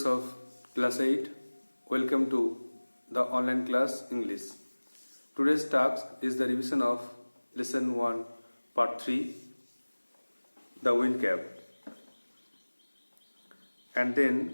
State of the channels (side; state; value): both; inverted; correlation -1.00